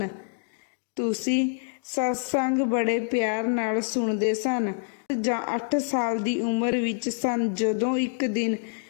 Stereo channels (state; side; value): silent; right; digital silence